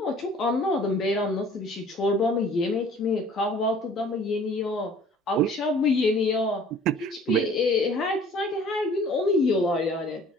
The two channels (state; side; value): normal; both; correlation 0.51